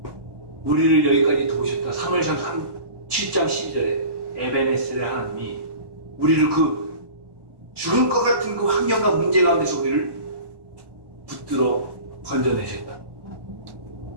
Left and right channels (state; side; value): late; left; 1.1 ms